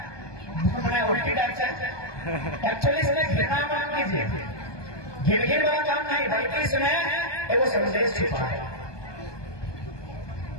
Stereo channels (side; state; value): right; late; 1.2 ms